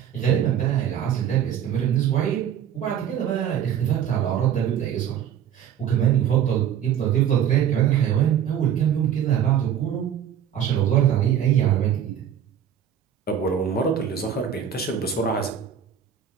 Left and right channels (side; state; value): left; quieter; 9.2 dB